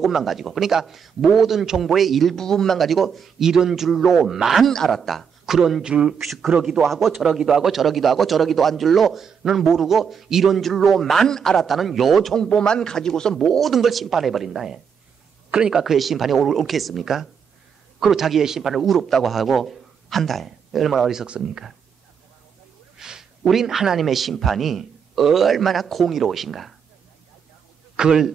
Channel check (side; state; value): left; quieter; 6.9 dB